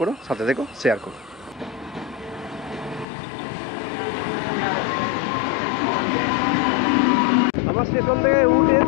করো, সাথে দেখো, শেয়ার করো। আমার স্টেশন থেকে উঠে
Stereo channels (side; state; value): right; drops out; at 3.1 s